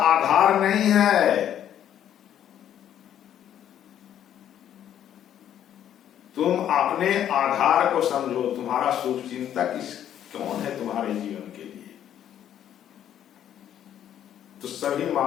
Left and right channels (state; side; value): quieter; right; 10.4 dB